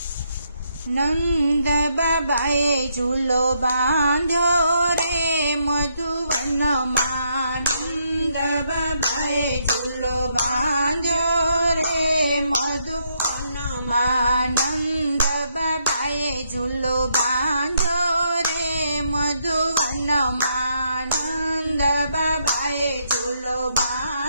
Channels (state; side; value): inverted; both; correlation -0.75